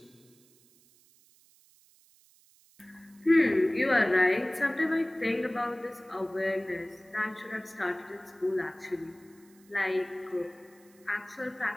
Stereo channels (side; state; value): right; noise; hiss, 29 dB below the sound